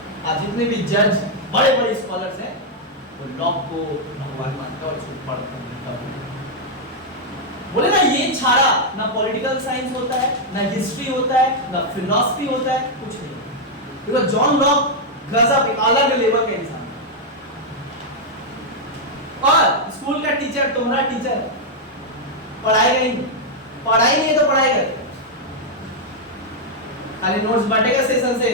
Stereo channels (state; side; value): normal; both; correlation -0.02